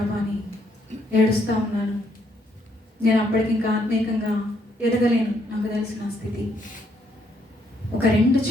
అని ఏడుస్తూ ఉన్నాను. నేను అప్పటికి ఇంకా ఆత్మీయంగా ఎదగలేను, నాకు తెలిసిన స్థితి. ఒక 2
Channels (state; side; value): normal; both; correlation 0.72